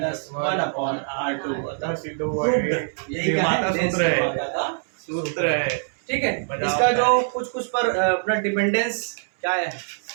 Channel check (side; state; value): left; silent; 63 dB below the other